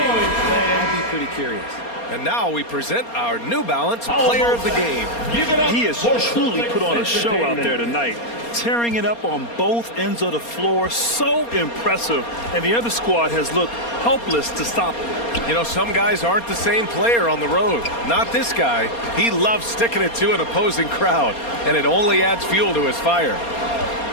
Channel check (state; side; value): late; right; 4.3 ms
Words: I'd be pretty curious. And now we present our New Balance player of the game. He has truly put on a show out there tonight, tearing it up on both ends of the floor. So impressive. And the other squad has looked helpless to stop him. You know, some guys aren't the same player on the road. Not this guy. He loves sticking it to an opposing crowd, and it only adds fuel to his fire.